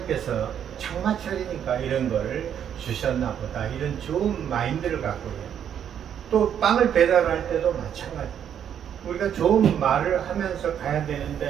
장마철이니까 이런 거를 주셨나 보다 이런 좋은 마인드를 갖고 해요. 또 빵을 배달할 때도 마찬가지. 우리가 좋은 말을 하면서 가야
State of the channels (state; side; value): quieter; left; 9.1 dB